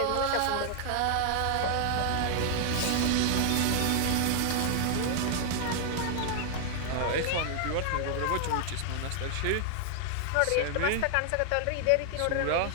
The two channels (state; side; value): different; both; correlation 0.00